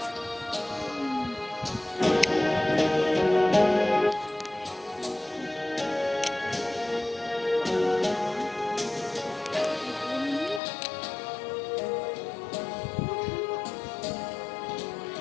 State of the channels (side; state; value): right; drops out; at 10.6 s